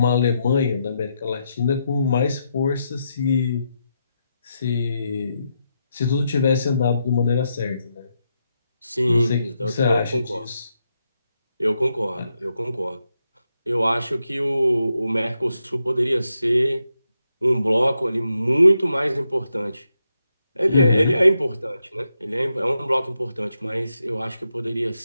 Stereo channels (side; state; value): both; inverted; correlation -0.83